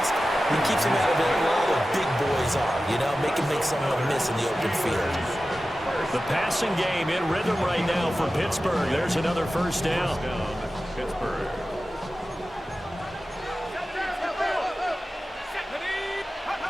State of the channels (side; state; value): both; normal; correlation 0.94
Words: He keeps him out of it where all the big boys are, you know, make someone miss in the open field. The passing game in rhythm right now for Pittsburgh. There's another 1st down. Pittsburgh.